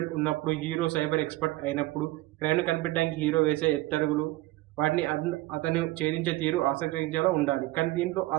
ఉన్నప్పుడు, హీరో సైబర్ ఎక్స్పర్ట్ అయినప్పుడు క్రైమ్ను కనిపెట్టడానికి హీరో వేసే ఎత్తడుగులు, వాటిని అతను ఛేదించే తీరు ఆసక్తించేలా ఉండాలి. కానీ దీంట్లో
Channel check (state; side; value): quieter; left; 18.3 dB